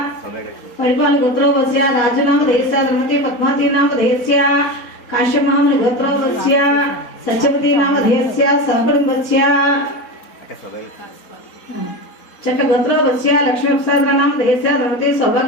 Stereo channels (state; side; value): late; right; 4.3 ms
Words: परिपाल गोत्रोपत्स्य राजू नाम देहस्य धर्मपत्नी पद्मावती नाम देहस्य काश्यप महामुनि गोत्रोपत्स्य सत्यवती नाम देहस्य सहकुटुंबस्य चट गोत्रोपत्स्य लक्ष्मी प्रसाद नाम देहस्य धर्मपत्नी